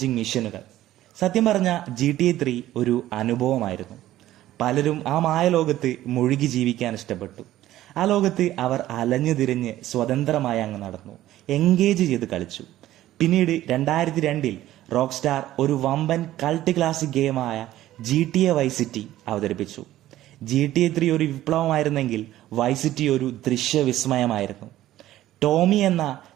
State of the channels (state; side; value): quieter; left; 14.2 dB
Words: മിഷനുകൾ. സത്യം പറഞ്ഞ GTA 3 ഒരു അനുഭവമായിരുന്നു. പലരും ആ മായലോകത്ത് മുഴുകി ജീവിക്കാൻ ഇഷ്ടപ്പെട്ടു. ആ ലോകത്ത് അവർ അലഞ്ഞു തിരിഞ്ഞ് സ്വതന്ത്രമായി അങ്ങ് നടന്നു, എൻഗേജ് ചെയ്ത് കളിച്ചു. പിന്നീട് 2002 റോക്ക് സ്റ്റാർ ഒരു വമ്പൻ കൾട്ട് ക്ലാസിക് ഗെയിമായ GTA വൈസ് സിറ്റി അവതരിപ്പിച്ചു. GTA 3 ഒരു വിപ്ലവമായിരുന്നെങ്കിൽ വൈസ് സിറ്റി ഒരു ദൃശ്യവിസ്മയമായിരുന്നു. ടോമി എന്ന